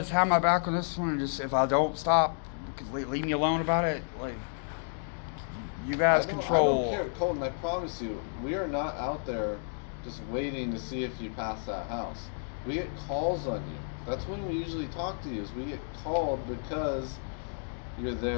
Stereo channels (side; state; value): right; silent; digital silence